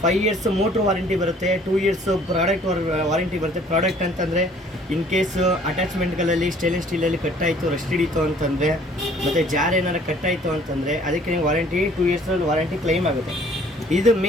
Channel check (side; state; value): both; normal; correlation 0.56